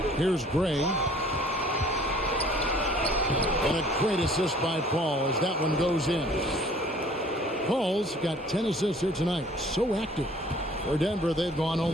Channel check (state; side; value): normal; both; correlation 0.54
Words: Here's Gray. And a great assist by Paul as that one goes in. Paul's got 10 assists here tonight. So active. For Denver, they've gone